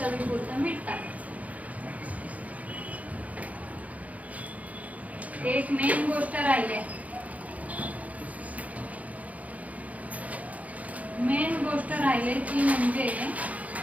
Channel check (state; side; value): late; left; 0.071 ms